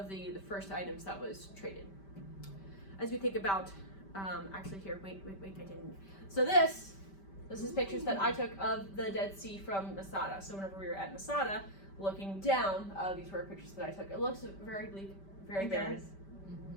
the first items that was traded. As we think about, actually here, wait, I didn't. So this is pictures that I took of the Dead Sea from Masada. So whenever we were at Masada, looking down, these were pictures that I took. It looks very bleak, very barren.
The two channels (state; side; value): late; right; 5.1 ms